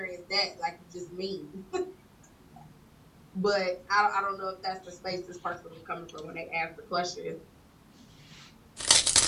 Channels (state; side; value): identical; both; correlation 1.00